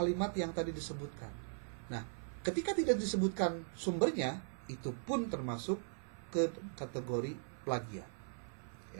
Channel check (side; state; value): left; silent; 52 dB below the other